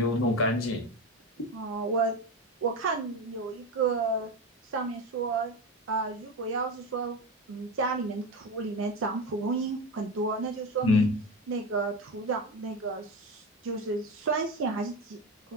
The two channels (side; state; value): both; normal; correlation 0.20